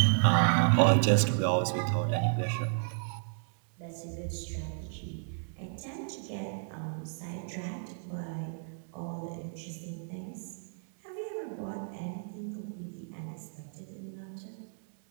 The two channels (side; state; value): left; silent; 56 dB below the other